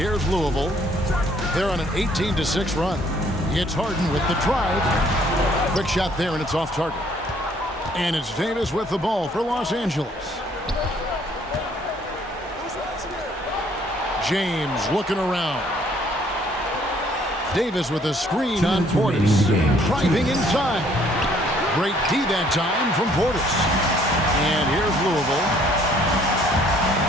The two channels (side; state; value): both; normal; correlation 0.62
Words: Louisville. They're on an 18-6 run. It's Harden with the drive. Quick shot there, and it's off target. And it's Davis with the ball for Los Angeles. James looking around. Davis with a screen on Portis. Driving inside. Great D that time from Portis. And here's Louisville.